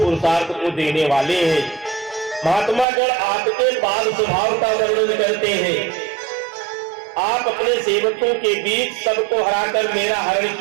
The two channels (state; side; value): drops out; left; at 2.9 s